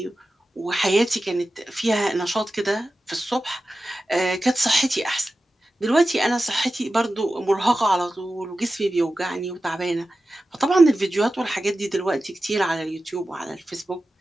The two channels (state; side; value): normal; both; correlation 0.94